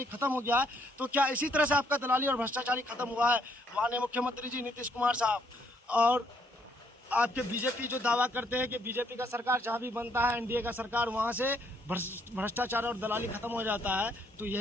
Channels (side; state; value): both; normal; correlation 0.69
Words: खत्म हो गया है, तो क्या इसी तरह से आपका दलाली और भ्रष्टाचारी खत्म हुआ है? माननीय मुख्यमंत्री जी नीतीश कुमार साहब और आपके बीजेपी जो दावा करते हैं कि बीजेपी का सरकार जहाँ भी बनता है, एनडीए का सरकार, वहाँ से भ्रष्टाचार और दलाली खत्म हो जाता है। तो